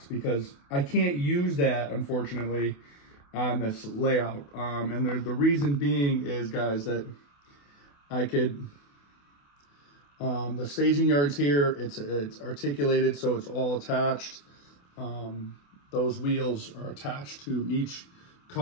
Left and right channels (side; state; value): right; late; 28 ms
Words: because I can't use that, unfortunately, on this layout. And the reason being is, guys, that I could, the staging yards here, it's articulated, so it's all attached. Those wheels are attached to each